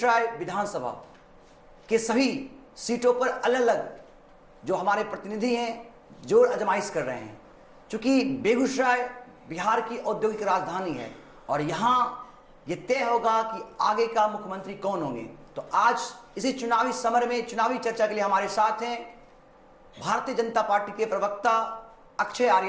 विधानसभा के सभी सीटों पर अलग अलग जो हमारे प्रतिनिधि हैं जोर आजमाइश कर रहे हैं। चूंकि बेगूसराय बिहार की औद्योगिक राजधानी है और यहाँ ये तय होगा कि आगे का मुख्यमंत्री कौन होंगे। तो आज इसी चुनावी समर में चुनावी चर्चा के लिए हमारे साथ हैं भारतीय जनता पार्टी के प्रवक्ता अक्षय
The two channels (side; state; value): both; identical; correlation 1.00